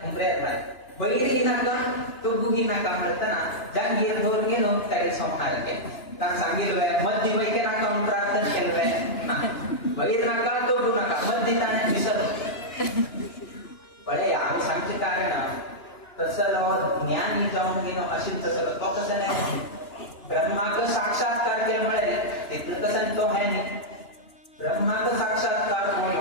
हुंबऱ्यात बाहेर बैरी नका तो गुगी नका म्हणताना जांगीर धोर गेलो त्याला संहार केला कारण सांगितलं मध्य वैके नका म्हणून प्रार्थना केलं बैर नका तो गु नका मध्य त्याने विसर बळे आम्ही सांगते कारण तसं ज्ञानी जाऊन गेलो असेल तसं तो कसं नाही ब्रह्माक साक्षात्कार केला मिळेल तिथं कसं तो आहे नाही ब्रह्माक साक्षात्कार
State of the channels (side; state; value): right; late; 2.9 ms